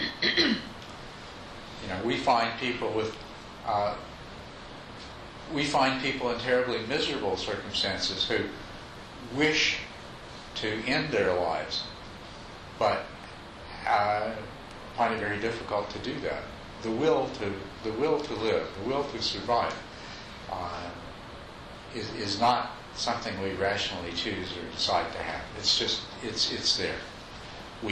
We find people in terribly miserable circumstances who wish to end their lives, but find it very difficult to do that. The will to live, the will to survive, is not something we rationally choose or decide to have. It's just it's there.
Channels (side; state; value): both; identical; correlation 1.00